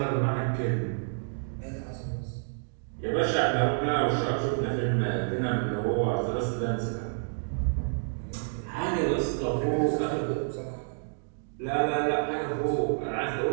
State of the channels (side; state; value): left; silent; digital silence